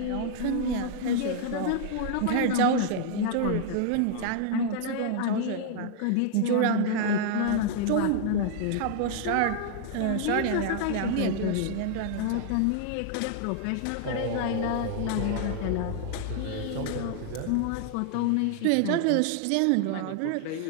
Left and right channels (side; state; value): both; different; correlation 0.00